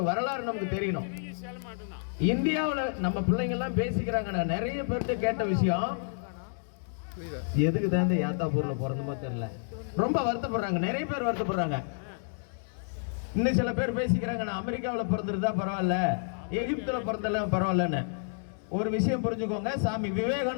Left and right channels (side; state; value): right; silent; digital silence